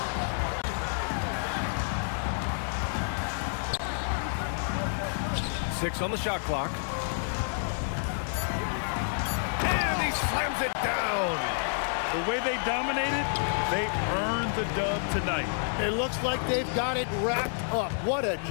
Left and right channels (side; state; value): right; silent; digital silence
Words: Six on the shot clock. And he slams it down. The way they dominated, they earned the dub tonight. It looks like they've got it wrapped up. What a